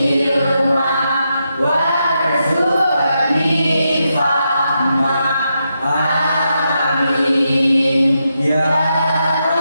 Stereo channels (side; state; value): both; inverted; correlation -0.84